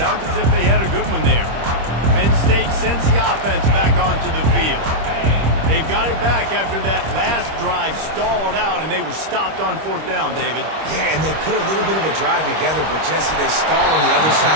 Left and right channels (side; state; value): left; late; 25 ms